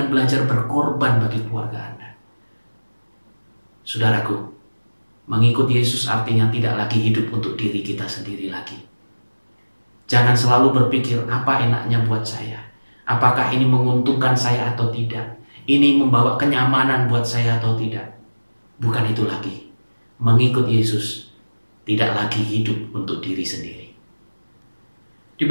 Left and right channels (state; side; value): inverted; both; correlation -1.00